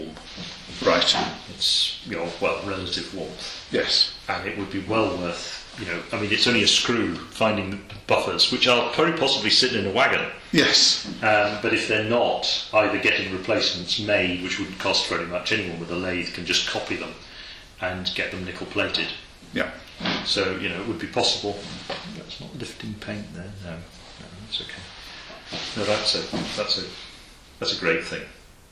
Right. It's, relative warmth. Yes. And it would be well worth, it's only a screw finding the buffers, which are very possibly sitting in a wagon. Yes. But if they're not, either getting replacements made, which wouldn't cost very much, anyone with a lathe can just copy them and get them nickel plated. Yeah. So, it would be possible. That's not lifting paint there. No, that's okay. No, that's a great thing.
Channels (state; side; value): identical; both; correlation 1.00